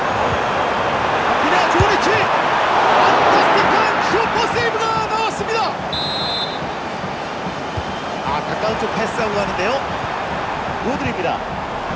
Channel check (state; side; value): identical; both; correlation 1.00